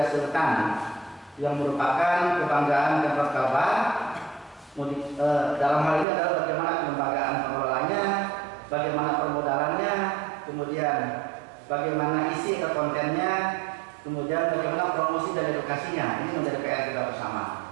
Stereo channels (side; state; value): left; drops out; at 6.1 s